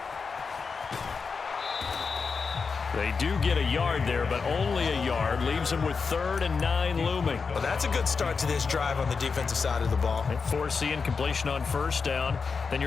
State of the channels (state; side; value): quieter; right; 5.1 dB